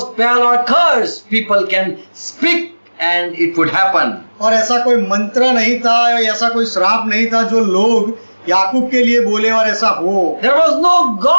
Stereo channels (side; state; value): both; inverted; correlation -1.00